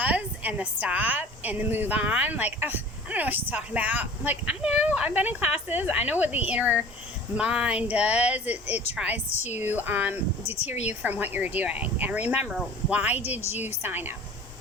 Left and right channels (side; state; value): both; normal; correlation 0.44